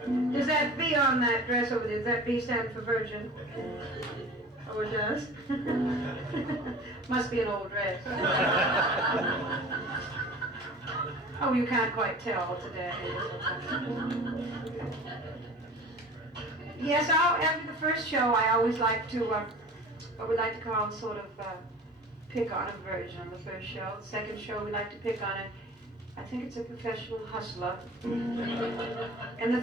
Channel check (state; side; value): normal; both; correlation 0.40